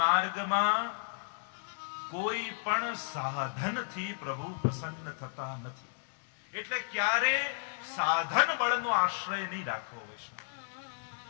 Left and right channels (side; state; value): right; silent; digital silence